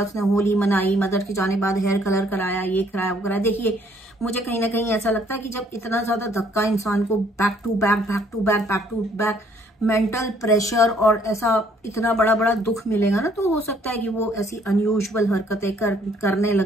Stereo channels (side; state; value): both; normal; correlation 0.63